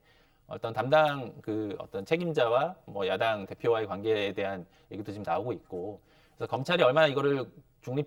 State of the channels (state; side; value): identical; both; correlation 1.00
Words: 어떤 담당 어떤 책임자와 뭐 야당 대표와의 관계에 대한 얘기도 지금 나오고 있고 그래서 검찰이 얼마나 이거를